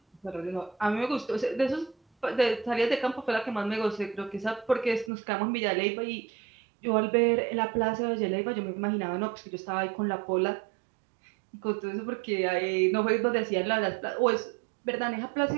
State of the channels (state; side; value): drops out; left; at 5.1 s